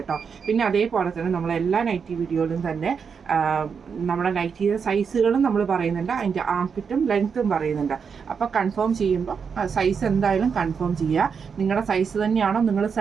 പിന്നെ അതേപോലെ തന്നെ നമ്മളെല്ലാ നൈറ്റി വീഡിയോയിലും തന്നെ നമ്മുടെ നൈറ്റിയുടെ സൈസുകളും നമ്മൾ പറയുന്നുണ്ട്, അതിൻ്റെ ആംപിറ്റും ലെങ്ത്തും പറയുന്നുണ്ട്. അപ്പോൾ കൺഫേം ചെയ്യുമ്പോൾ സൈസ് എന്തായാലും കൺഫേം ചെയ്യുക. നിങ്ങളുടെ സൈസ് തന്നെയാണോ നിങ്ങൾ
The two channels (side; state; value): left; quieter; 6.2 dB